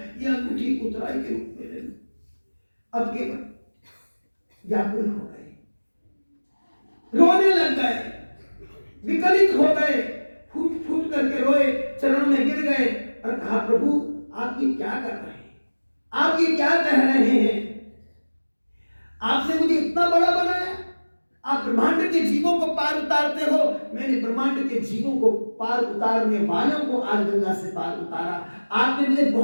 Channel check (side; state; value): both; inverted; correlation -1.00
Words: ये अंगूठी उतराई के रूप में ले लो। अब केवट व्याकुल हो गए, रोने लग गए, विकलित हो गए, फूट फूट करके रोए, चरणों में गिर गए और कहा प्रभु आप ये क्या कर रहे हैं, आप ये क्या कह रहे हैं? आपने मुझे इतना बड़ा बनाया, आप ब्रह्मांड के जीवों को पार उतारते हो, मैंने ब्रह्मांड के जीवों को पार उतारने वालों को आज गंगा से पार उतारा। आपने मुझे